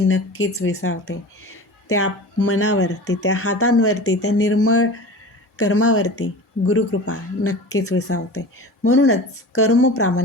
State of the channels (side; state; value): both; normal; correlation 0.35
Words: विसावते. त्या मनावरती, त्या हातांवरती, त्या निर्मळ कर्मावरती गुरुकृपा नक्कीच विसावते. म्हणूनच कर्म